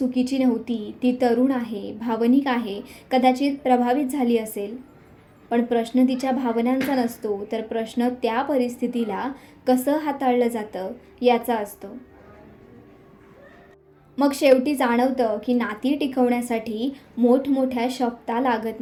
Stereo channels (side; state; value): both; identical; correlation 1.00